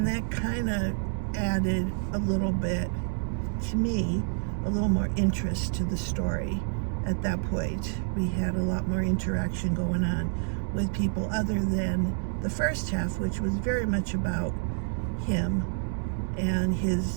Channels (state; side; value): silent; left; 59 dB below the other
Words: that kind of added a little bit, to me, a little more interest to the story. At that point, we had a lot more interaction going on with people other than the first half, which was very much about him and